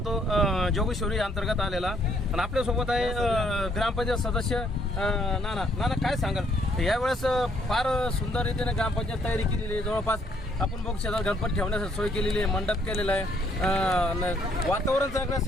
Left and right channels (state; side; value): normal; both; correlation 0.68